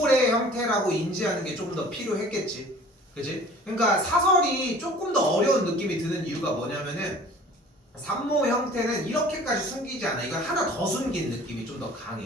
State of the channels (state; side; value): normal; both; correlation 0.47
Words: 형태라고 인지하는 게 조금 더 필요했겠지. 그치? 그러니까 사설이 조금 더 어려운 느낌이 드는 이유가 뭐냐면은 산모 형태는 이렇게까지 숨기지 않아. 이건 하나 더 숨긴 느낌이 좀 더